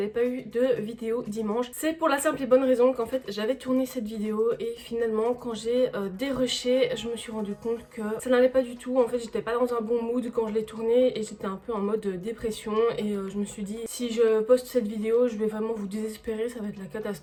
pas eu de vidéo dimanche, c'est pour la simple et bonne raison qu'en fait j'avais tourné cette vidéo et finalement quand j'ai dérushé, je me suis rendu compte que ça n'allait pas du tout. En fait j'étais pas dans un bon mood quand je l'ai tournée et j'étais un peu en mode dépression et je me suis dit si je poste cette vidéo je vais vraiment vous désespérer, ça va être la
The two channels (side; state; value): both; identical; correlation 1.00